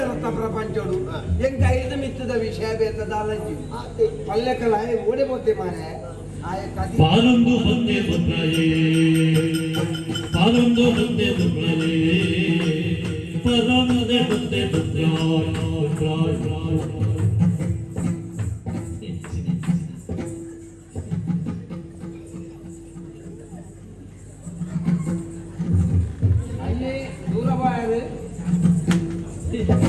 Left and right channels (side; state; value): both; identical; correlation 1.00